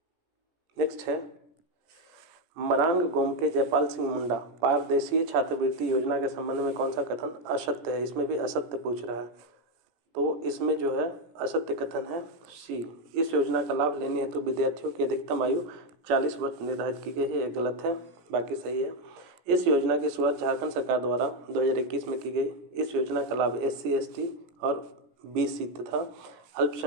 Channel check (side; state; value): left; late; 17 ms